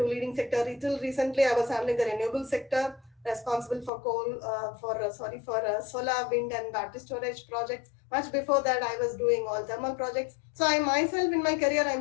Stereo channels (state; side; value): drops out; right; at 3.9 s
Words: leading sector. Until recently, I was handling the renewable sector. responsible for solar, wind, and battery storage projects. Much before that, I was doing all thermal projects. So I myself, in my career,